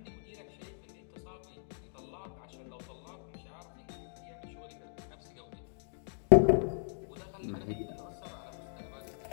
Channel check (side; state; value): right; silent; digital silence